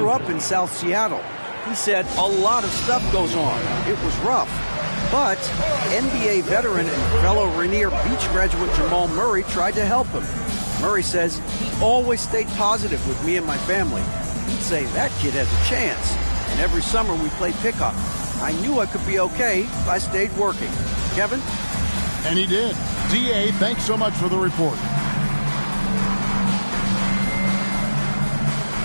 up in South Seattle. He said a lot of stuff goes on. It was rough. But NBA veteran and fellow Rainier Beach graduate Jamal Murray tried to help him. Murray says he always stayed positive with me and my family. He'd say that kid has a chance. And every summer we played pickup. I knew I could be okay if I stayed working. Kevin? And he did. D.A., thanks so much for the report.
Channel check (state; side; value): inverted; both; correlation -1.00